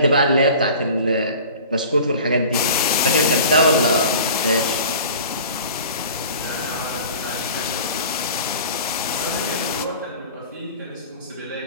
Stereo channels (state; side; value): inverted; both; correlation -0.42